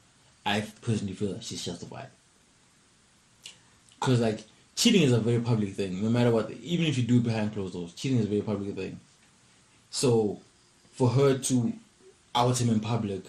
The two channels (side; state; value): both; identical; correlation 1.00